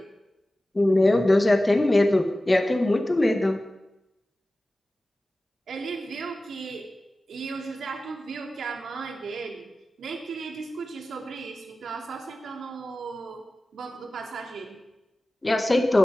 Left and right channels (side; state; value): both; normal; correlation 0.96